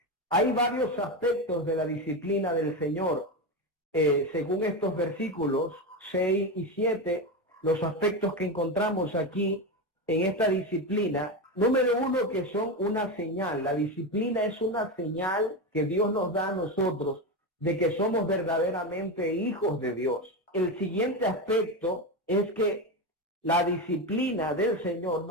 Hay varios aspectos de la disciplina del Señor. Según estos versículos 6 y 7, los aspectos que encontramos aquí en esta disciplina, número uno, que son una señal. La disciplina es una señal que Dios nos da a nosotros de que somos verdaderamente hijos de Dios. El siguiente aspecto es que la disciplina del Señor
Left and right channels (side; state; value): both; normal; correlation 0.16